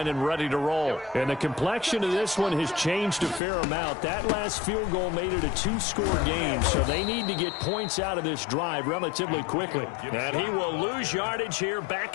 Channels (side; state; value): right; drops out; at 3.4 s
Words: and ready to roll. And the complexion of this one has changed a fair amount. That last field goal made it a 2-score game, so they need to get points out of this drive relatively quickly. And he will lose yardage here